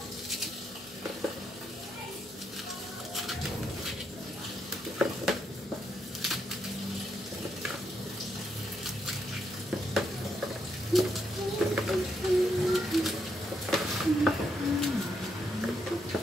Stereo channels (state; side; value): normal; both; correlation 0.79